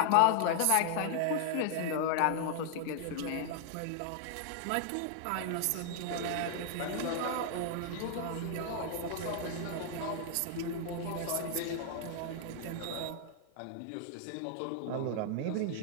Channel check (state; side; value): different; both; correlation 0.00